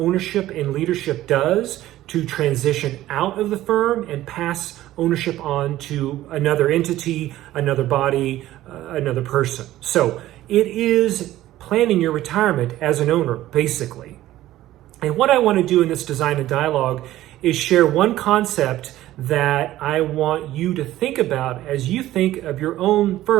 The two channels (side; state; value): left; quieter; 14.7 dB